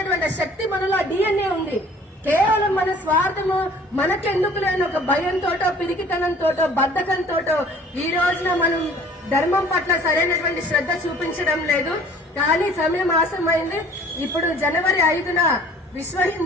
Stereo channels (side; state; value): both; normal; correlation 0.51